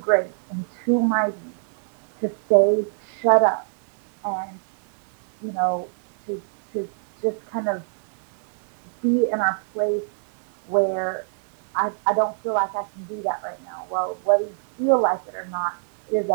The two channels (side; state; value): left; silent; digital silence